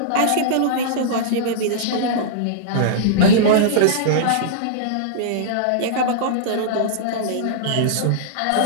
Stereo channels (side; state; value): both; different; correlation -0.02